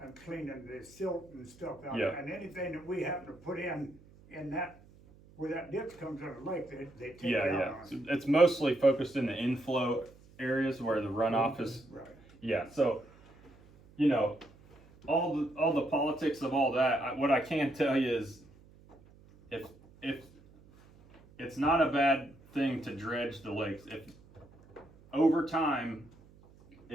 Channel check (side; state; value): right; noise; hum, 25 dB below the sound